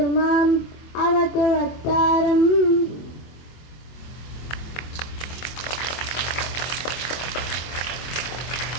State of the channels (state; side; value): late; right; 24 ms